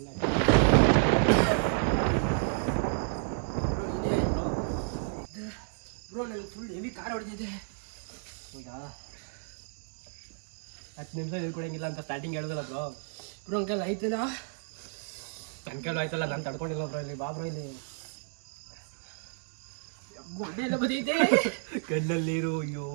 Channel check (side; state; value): left; silent; digital silence